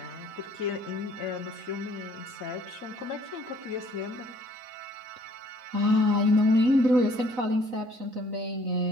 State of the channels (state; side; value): late; left; 3.9 ms